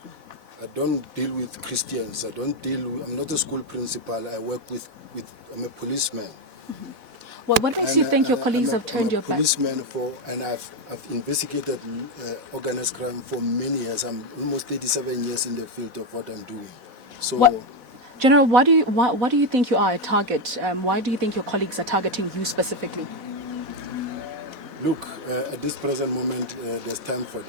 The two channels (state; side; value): late; left; 4.0 ms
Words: I don't deal with Christians. I'm not a school principal. I work with. I'm a policeman. Mm-hmm. Well, what makes you think your colleagues have turned your back? I'm a policeman and I've investigated organized crime for many years. I'm almost 37 years in the field of what I'm doing. So. General, why do you think you are a target? Why do you think your colleagues are targeting you specifically? Look, at this present moment, there's time for